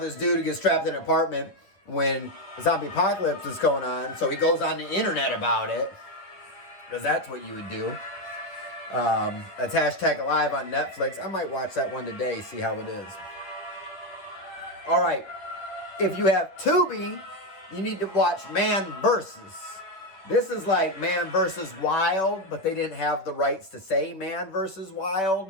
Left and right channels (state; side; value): late; right; 10 ms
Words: this dude who gets trapped in an apartment when the zombie apocalypse is going on. So he goes on the internet about it, because that's what you would do. That's #alive on Netflix. I might watch that one today, see how it is. All right. If you have Tubi, you need to watch Man Versus. This is like Man vs. Wild, but they didn't have the rights to say Man vs.